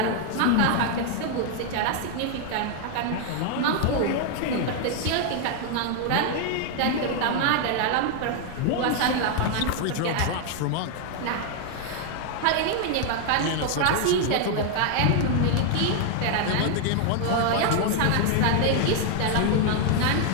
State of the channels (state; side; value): different; both; correlation 0.00